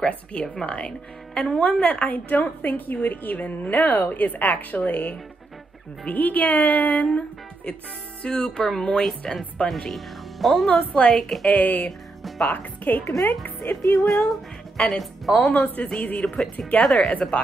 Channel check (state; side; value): quieter; left; 3.1 dB